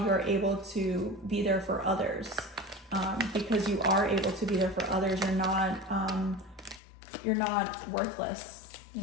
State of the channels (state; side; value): drops out; right; at 6.8 s